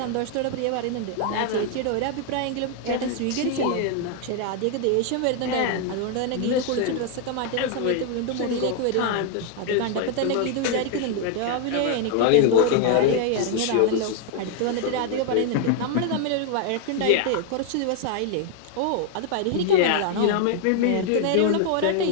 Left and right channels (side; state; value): both; different; correlation 0.00